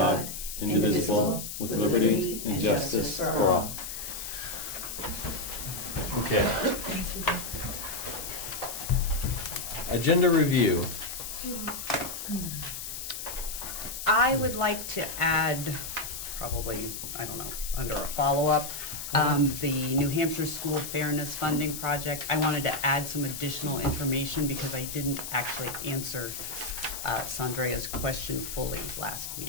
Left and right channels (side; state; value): left; noise; hiss, 7 dB below the sound